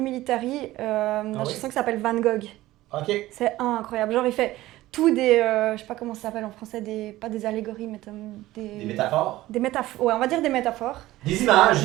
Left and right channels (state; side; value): quieter; left; 16.6 dB